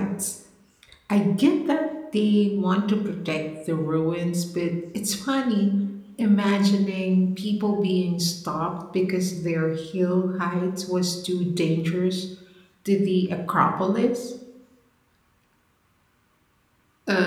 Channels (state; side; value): identical; both; correlation 1.00